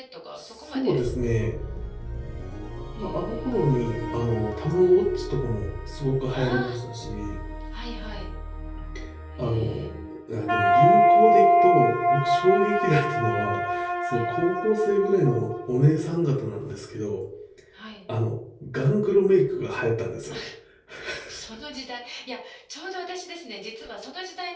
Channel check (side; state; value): both; identical; correlation 1.00